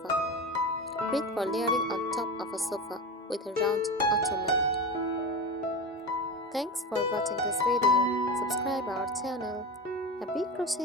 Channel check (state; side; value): normal; both; correlation 0.24